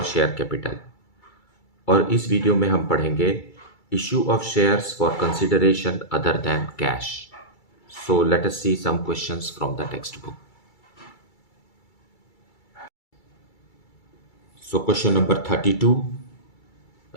share capital. और इस वीडियो में हम पढ़ेंगे issue of shares for consideration other than cash. So let us see some questions from the text book. So question number 32.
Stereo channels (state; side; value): late; right; 2.3 ms